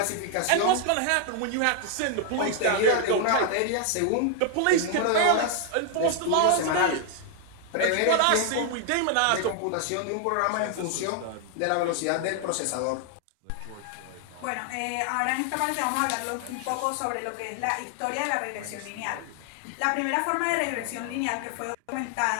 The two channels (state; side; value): different; both; correlation 0.00